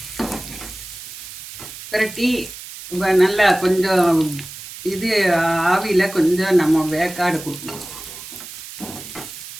பெரட்டி நல்லா கொஞ்சம் இது ஆவியில் கொஞ்சம் நம்ம வேக்காடு கொடுக்கணும்.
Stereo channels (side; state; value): right; noise; hiss, 13 dB below the sound